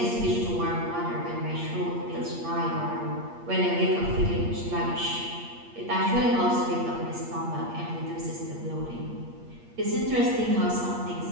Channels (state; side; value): late; left; 8.5 ms